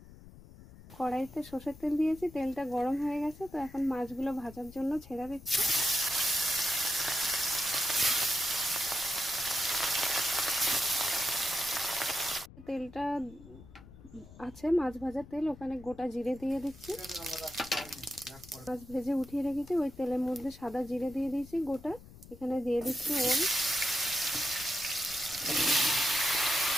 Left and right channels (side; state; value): left; noise; rumble, 19 dB below the sound